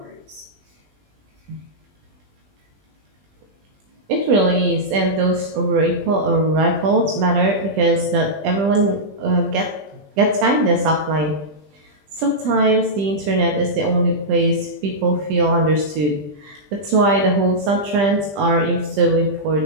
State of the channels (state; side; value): late; left; 20 ms